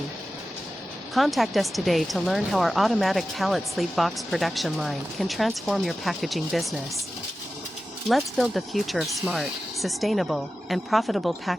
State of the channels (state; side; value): normal; both; correlation 0.94